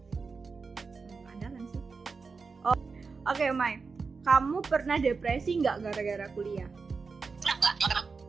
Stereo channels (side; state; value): left; quieter; 4.7 dB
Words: Keandalan sih. Oh, oke, Mai. Kamu pernah depresi nggak gara-gara kuliah?